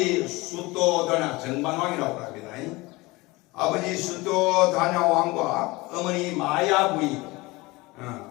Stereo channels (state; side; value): quieter; right; 22.4 dB